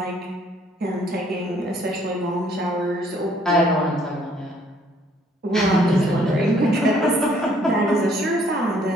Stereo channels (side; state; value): both; normal; correlation 0.63